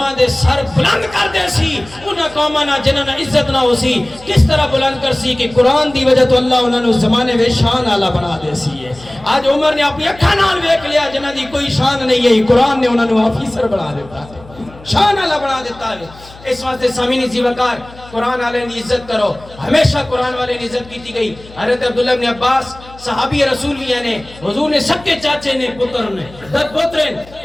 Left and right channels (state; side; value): noise; left; hum, 21 dB below the sound